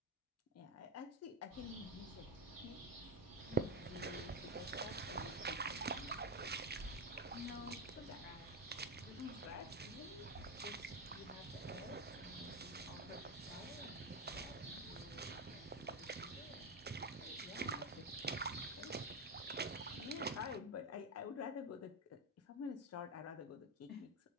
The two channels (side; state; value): both; normal; correlation 0.12